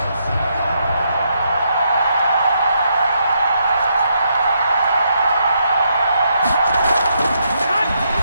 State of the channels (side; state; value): both; inverted; correlation -0.77